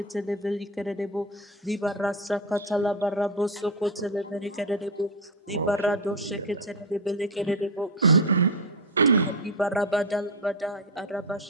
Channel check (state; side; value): normal; both; correlation 0.11